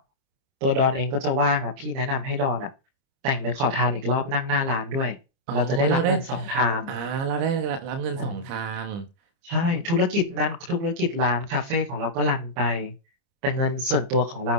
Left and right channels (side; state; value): left; late; 30 ms